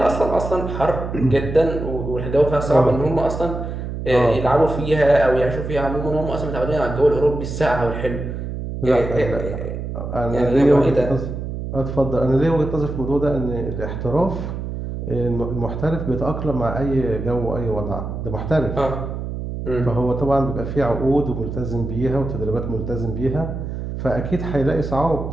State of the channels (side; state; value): right; noise; hum, 6 dB below the sound